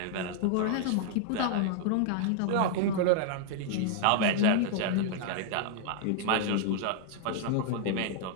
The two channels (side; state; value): both; different; correlation 0.00